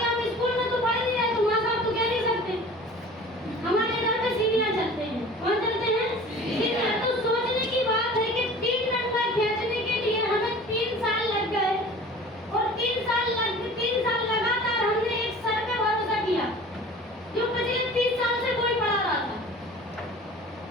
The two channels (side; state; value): both; normal; correlation 0.43